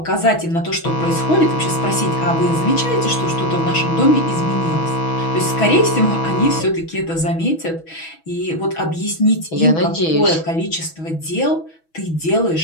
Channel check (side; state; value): right; late; 6.2 ms